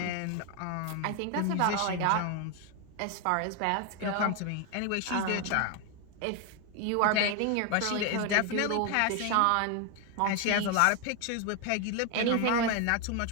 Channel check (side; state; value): both; different; correlation 0.01